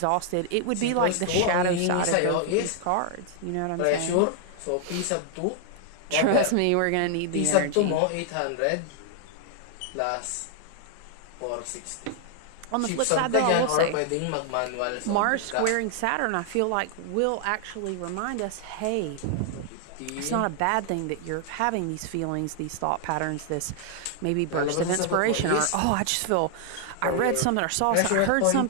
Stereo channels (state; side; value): different; both; correlation 0.00